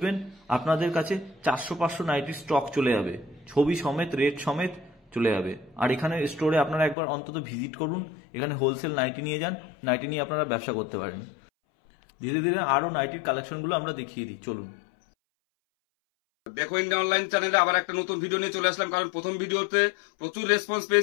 আপনাদের কাছে 400-500 নাইটির স্টক চলে যাবে, ছবি সমেত, রেট সমেত চলে যাবে। আর এখানে স্টোরে আপনারা একবার অন্তত ভিজিট করুন, এখানে হোলসেল নাইটি নিয়ে যান, নাইটি নিয়ে আপনারা ব্যবসা করতে পারেন। ধীরে ধীরে আরো নাইটির কালেকশনগুলো আমরা দেখিয়ে দিই, চলুন। দেখো ইন্ডিয়া অনলাইন চ্যানেলে আবার একটা নতুন ভিডিও নিয়ে চলে আসলাম। কারণ প্রথম ভিডিওতে প্রচুর রেসপন্স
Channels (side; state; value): right; drops out; at 7.0 s